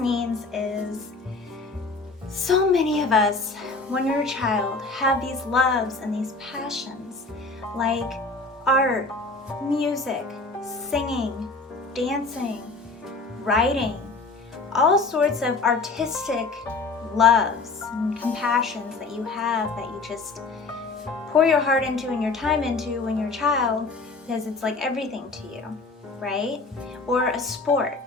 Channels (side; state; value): right; quieter; 3.8 dB